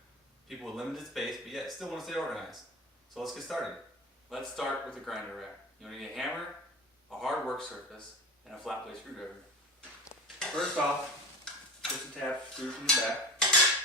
people with limited space, but yet still want to stay organized. So let's get started. Let's start with the grinder rack. You'll need a hammer, a hard work surface, and a flat blade screwdriver. First off, push the tab screw from the back.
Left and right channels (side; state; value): both; normal; correlation 0.29